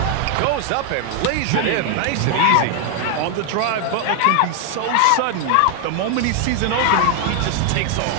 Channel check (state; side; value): different; both; correlation 0.01